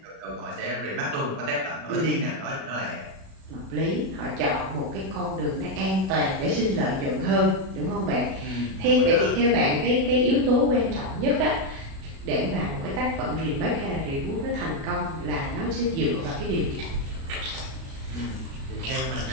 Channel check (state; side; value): late; left; 37 ms